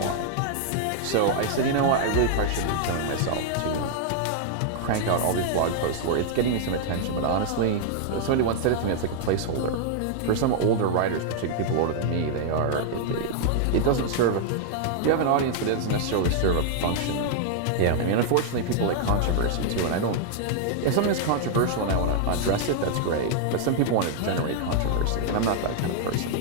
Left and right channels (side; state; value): both; different; correlation 0.00